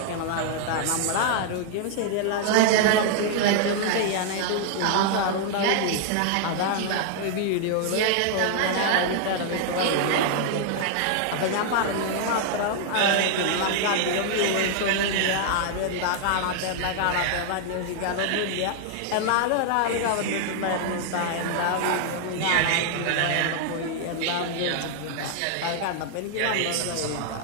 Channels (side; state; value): both; different; correlation 0.00